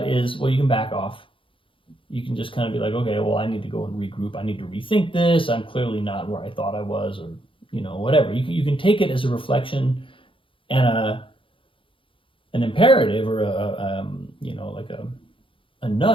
is, well, you can back off. You can just kind of be like, okay, well, I need to go and regroup. I need to rethink this. I'm clearly not where I thought I was, or whatever. You can take it as a reflection and an imperative, or a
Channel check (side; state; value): right; late; 0.25 ms